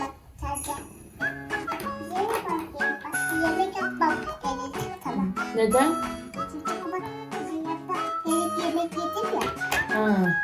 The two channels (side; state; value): both; identical; correlation 1.00